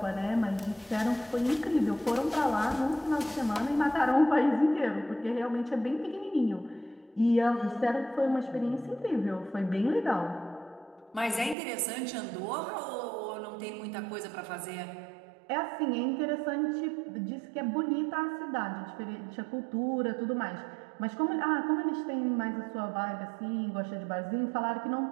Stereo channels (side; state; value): left; drops out; at 11.6 s